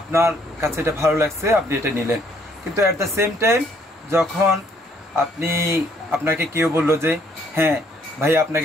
কাছে এটা ভালো লাগছে, আপনি এটা নিলেন। কিন্তু অ্যাট দ্য সেম টাইম যখন আপনাকে কেউ বললো যে হ্যাঁ ভাই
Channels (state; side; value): normal; both; correlation 0.65